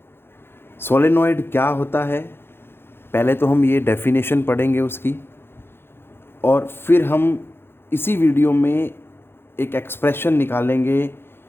सोलेनॉइड क्या होता है, पहले तो हम ये डेफिनेशन पढ़ेंगे उसकी, और फिर हम इसी वीडियो में एक एक्सप्रेशन निकालेंगे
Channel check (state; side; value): late; right; 0.11 ms